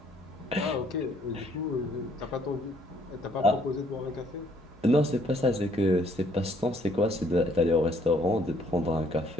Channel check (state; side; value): normal; both; correlation 0.65